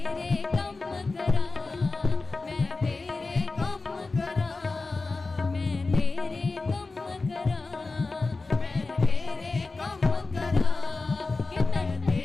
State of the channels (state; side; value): quieter; right; 3.7 dB